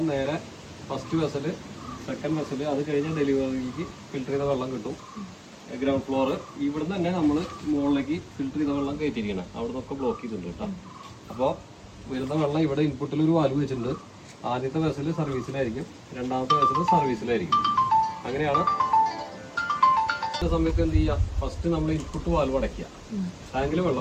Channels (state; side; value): identical; both; correlation 1.00